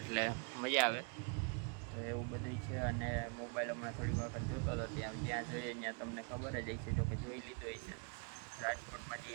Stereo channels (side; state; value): left; quieter; 36.8 dB